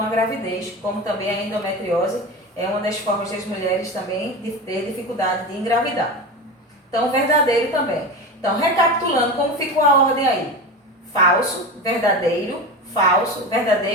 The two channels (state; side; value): normal; both; correlation 0.25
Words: a gravidez, como também a endometriose é uma das formas das mulheres também de ter dificuldade de engravidar. Então, verdadeiro também. Então, recapitulando, como ficou a ordem aí? Falso, verdadeiro,